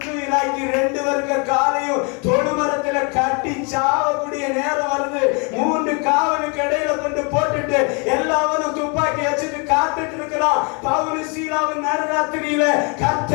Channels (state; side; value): quieter; right; 33.3 dB